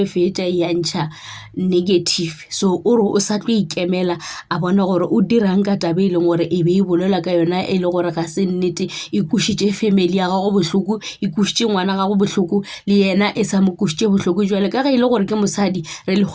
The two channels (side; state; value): both; identical; correlation 1.00